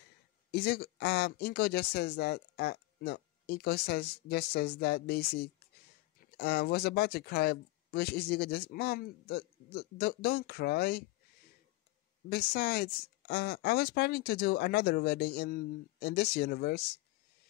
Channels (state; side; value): quieter; right; 20.2 dB